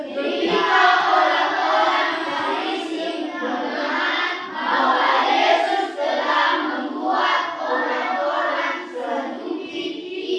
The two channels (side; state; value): both; identical; correlation 1.00